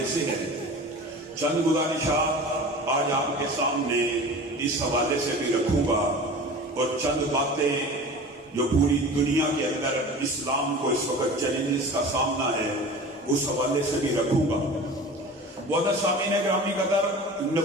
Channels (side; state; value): both; normal; correlation 0.37